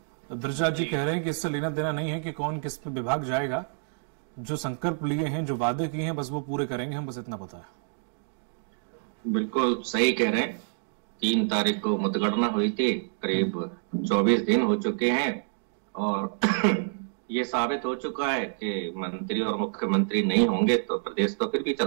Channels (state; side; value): silent; left; digital silence